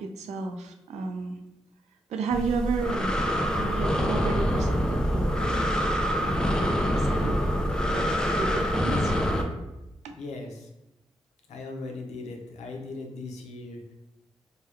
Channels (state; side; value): normal; both; correlation 0.81